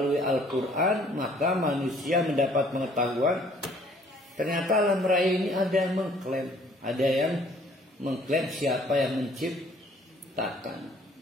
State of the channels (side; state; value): both; normal; correlation 0.59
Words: Al-Quran, maka manusia mendapat pengetahuan. Ternyata alam raya ini ada yang mengklaim. Ada yang mengklaim siapa yang menciptakan.